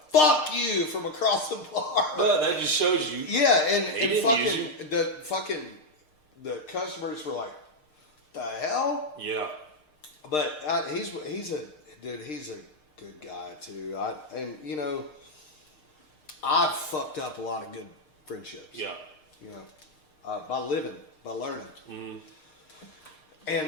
fuck you, from across the bar. But that just shows you. Yeah, and the customers were like, the hell? Yeah. But he's a good guy too. And you know, I've fucked up a lot of good friendships. Yeah. You know, by living, by learning. Mm-hmm.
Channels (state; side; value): late; right; 6.6 ms